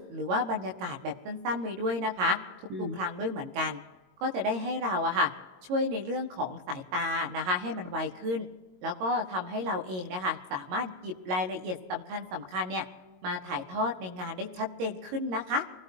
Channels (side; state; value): left; late; 22 ms